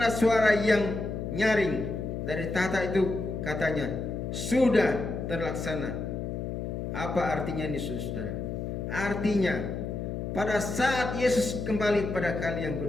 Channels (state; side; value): noise; left; hum, 4 dB below the sound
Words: suara yang nyaring dari tahta itu, katanya, sudah terlaksana. Apa artinya ini, saudara? Artinya pada saat Yesus kembali pada kali yang